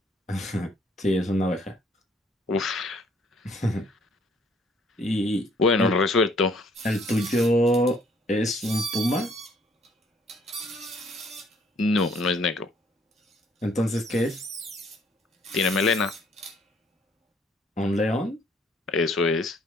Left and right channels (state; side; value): normal; both; correlation 0.63